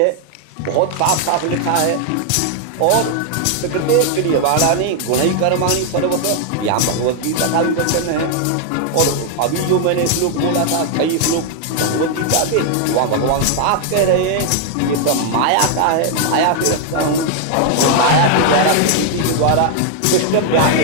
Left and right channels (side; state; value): both; different; correlation 0.00